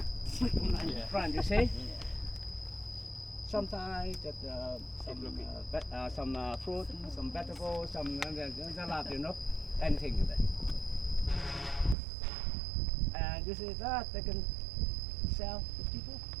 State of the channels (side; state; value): left; drops out; at 12.0 s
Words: put it in front. You see. Sometimes just some fruit, some vegetables, some salad, you know, anything in there. And you see that they can sell to people,